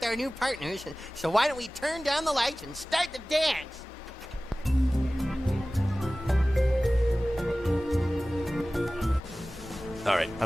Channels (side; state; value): both; normal; correlation 0.97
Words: our new partners, so why don't we turn down the lights and start the dance? All right, I